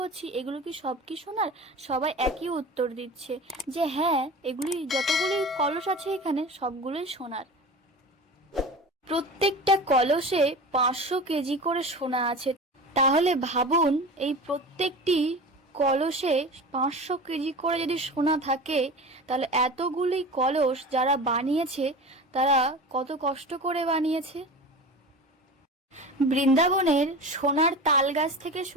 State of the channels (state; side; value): normal; both; correlation 0.33